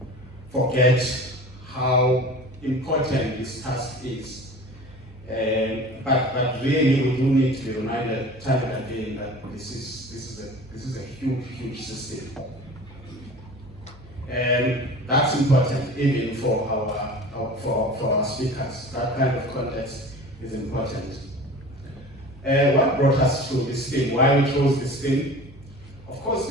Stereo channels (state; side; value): normal; both; correlation 0.39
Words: forget how important this task is, but really we do need to be reminded time and again that this is a huge system, and that's important even for our speakers. That kind of context is important. What brought us to this thing? Why we chose this thing? Of course,